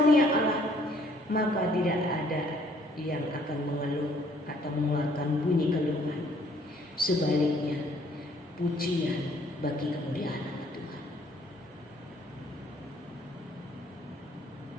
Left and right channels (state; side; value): normal; both; correlation 0.62